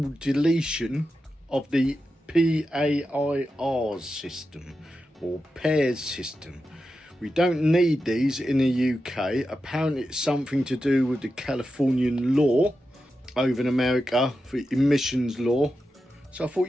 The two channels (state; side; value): normal; both; correlation 0.90